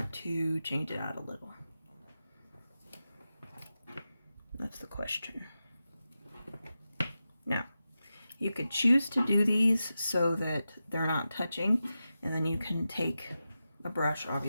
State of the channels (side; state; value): both; inverted; correlation -0.92